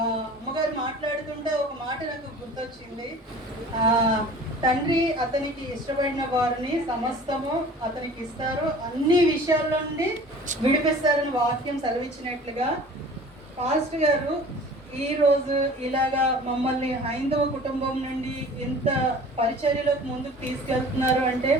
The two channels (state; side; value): normal; both; correlation 0.44